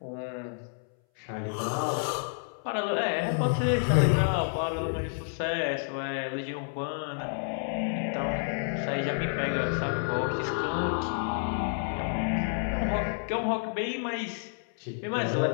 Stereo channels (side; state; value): right; silent; 58 dB below the other